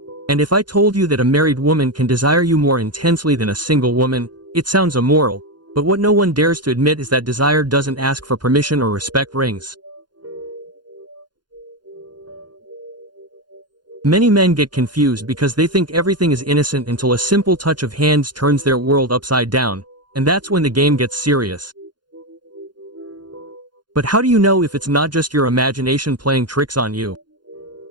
And if I told you that a married woman can desire you more intensely than a single woman, it sounds immoral, but what no one dares to admit is that desire doesn't ask for permission or respect rings. Many men get confused because they think everything is innocent until a simple touch of hands turns their world upside down, and that's when the game gets serious. But how do you know if it's not just your imagination playing tricks on you?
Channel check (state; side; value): late; left; 0.71 ms